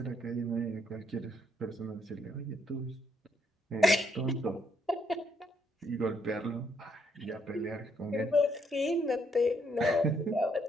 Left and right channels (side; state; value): both; normal; correlation 0.71